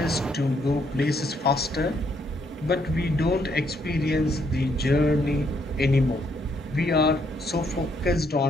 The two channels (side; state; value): both; normal; correlation 0.72